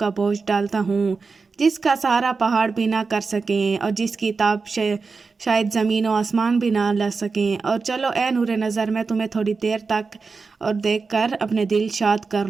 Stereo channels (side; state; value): left; quieter; 4.5 dB